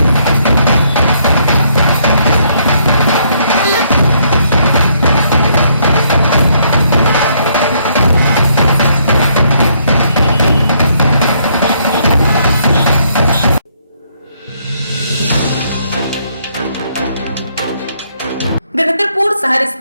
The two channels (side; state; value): both; inverted; correlation -0.70